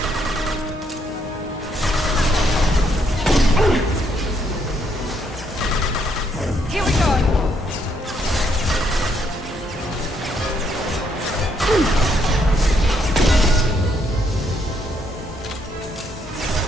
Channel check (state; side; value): normal; both; correlation 0.73